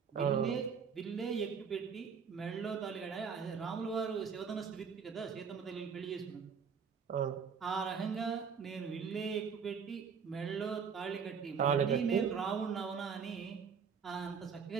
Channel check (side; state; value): left; quieter; 6.4 dB